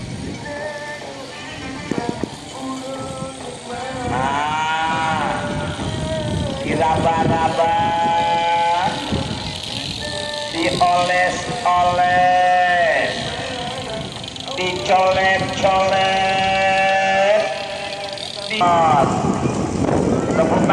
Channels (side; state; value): both; identical; correlation 1.00